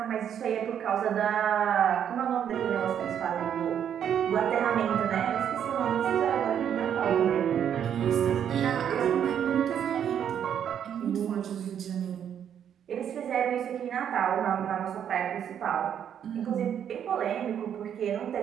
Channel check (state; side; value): quieter; left; 9.0 dB